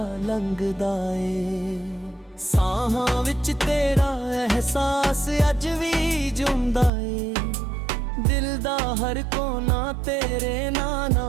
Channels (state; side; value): drops out; left; at 6.9 s